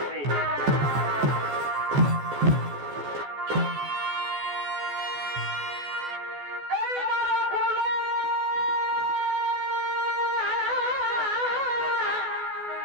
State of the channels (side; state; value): left; late; 14 ms